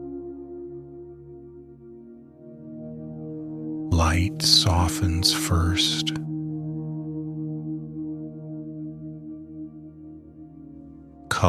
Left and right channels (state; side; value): identical; both; correlation 1.00